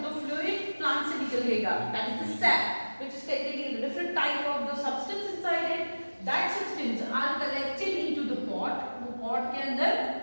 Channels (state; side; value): inverted; both; correlation -1.00